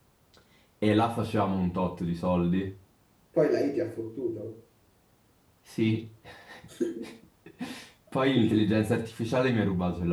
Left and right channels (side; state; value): both; identical; correlation 1.00